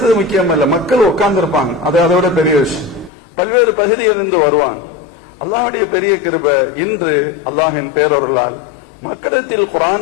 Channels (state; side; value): drops out; right; at 3.1 s